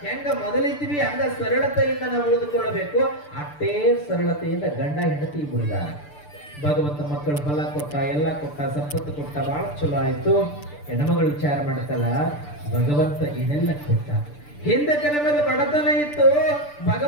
ಹೆಂಗ ಮೊದಲಿದ್ವಿ ಹಂಗ ಸರಳತೆಯಿಂದ ನಾವು ಉಳಿದುಕೊಳ್ಳಬೇಕು. ಅಷ್ಟೇ ಸರಳತೆಯಿಂದ ಗಂಡ ಹೆಂಡತಿ ಬಿಡಿದಾರ. ಭಗವಂತ ಮಕ್ಕಳು ಫಲ ಕೊಟ್ಟ, ಎಲ್ಲ ಕೊಟ್ಟ, ಸಂಪತ್ತು ಕೊಟ್ಟ, ಬಹಳ ಚಲೋ ಆಯ್ತು. ಹೆಣ್ಮಗಳು ವಿಚಾರ ಮಾಡ್ತಲ್ಲ, ಭಗವಂತ ಏನೆಲ್ಲ ಕೊಟ್ಟ. ಹಿಂದಕ್ಕೆ ನಮಗೆ ಬಡತನ ಇತ್ತು,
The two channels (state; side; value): late; right; 6.8 ms